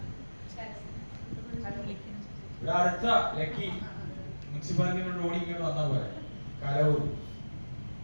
ഇവിടെ അടുത്ത ലക്കി മുനിസിപ്പാലിറ്റിയുടെ ഓടിക്കൊണ്ട് വന്നാൽ പോലെ കലവൂർ.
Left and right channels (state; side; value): inverted; both; correlation -1.00